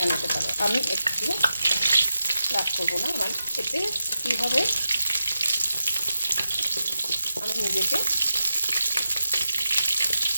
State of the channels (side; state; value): both; inverted; correlation -0.88